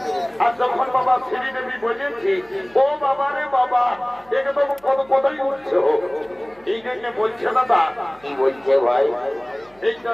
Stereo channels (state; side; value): noise; right; hum, 29 dB below the sound